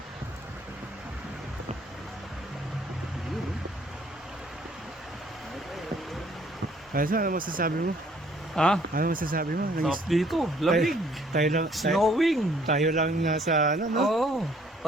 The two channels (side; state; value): both; normal; correlation 0.61